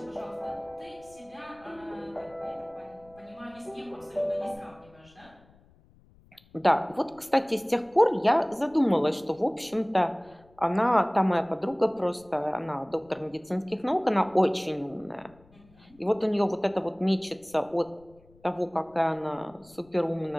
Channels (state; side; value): noise; left; rumble, 28 dB below the sound